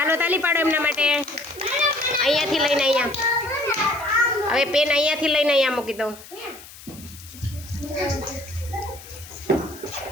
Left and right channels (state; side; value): noise; left; hiss, 18 dB below the sound